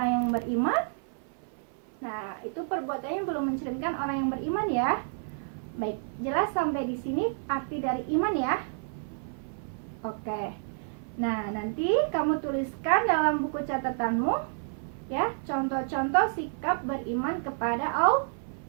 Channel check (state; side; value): silent; left; 56 dB below the other